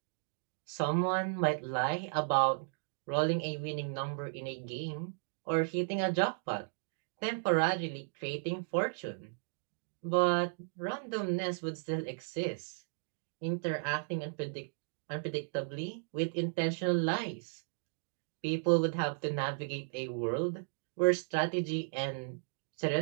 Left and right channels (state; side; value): silent; left; digital silence